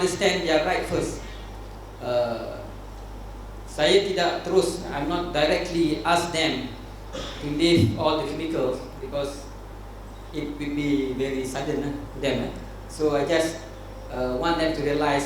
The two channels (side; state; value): both; identical; correlation 1.00